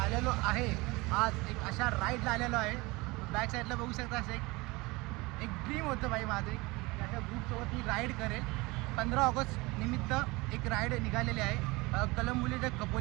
आलेलो आहे आज एक अशा राईडला आलेलो आहे. बॅक साईडला बघू शकता असं एक ड्रीम होतं भाई माझं, की अशा ग्रुपसोबत मी राईड करेल. 15 ऑगस्ट निमित्त एक राईड निघालेली आहे कलंबोली ते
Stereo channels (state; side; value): quieter; left; 23.4 dB